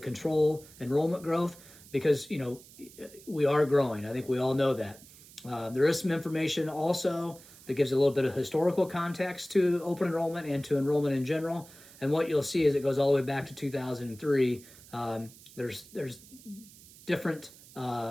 enrollment growth because, we are growing. I think we all know that. There is some information also that gives a little bit of historical context to open enrollment and to enrollment in general. And what you'll see is it goes all the way back to 2003. There's different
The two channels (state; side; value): noise; right; hiss, 21 dB below the sound